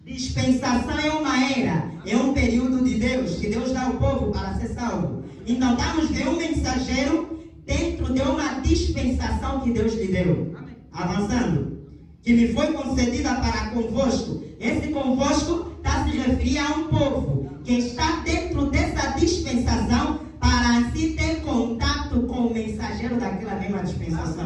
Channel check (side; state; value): both; identical; correlation 1.00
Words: Dispensação é uma era, é um período de Deus, que Deus dá ao povo para ser salvo. Então, estamos vendo um mensageiro dentro de uma dispensação que Deus lhe deu. Avançando. Que me foi concedida para convosco. Esse convosco está se referindo a um povo que está dentro dessa dispensação para assim ter contato com o mensageiro daquela mesma